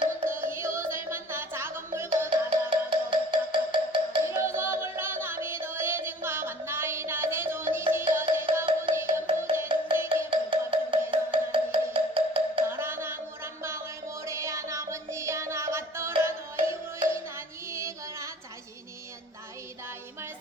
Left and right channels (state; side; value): normal; both; correlation 0.50